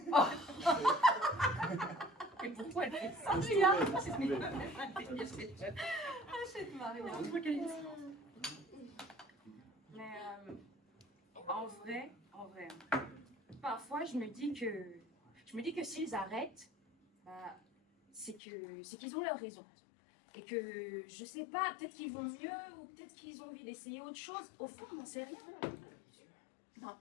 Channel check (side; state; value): right; drops out; at 18.4 s